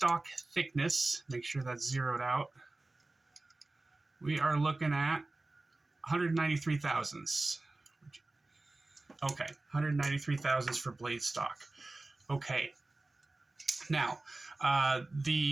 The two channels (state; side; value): quieter; left; 3.0 dB